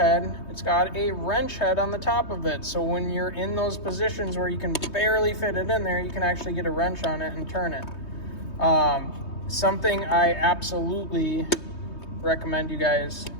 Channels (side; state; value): right; late; 3.2 ms